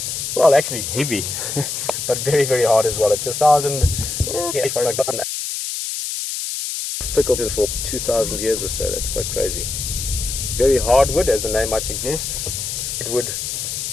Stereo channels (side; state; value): left; noise; hiss, 4 dB below the sound